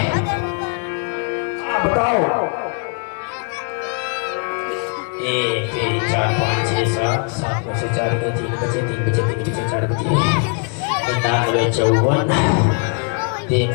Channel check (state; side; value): quieter; right; 38.6 dB